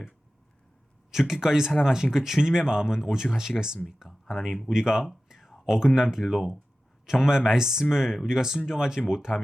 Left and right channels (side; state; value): both; normal; correlation 0.95